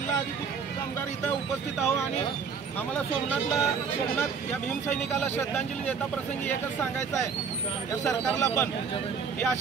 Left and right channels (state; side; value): quieter; left; 5.9 dB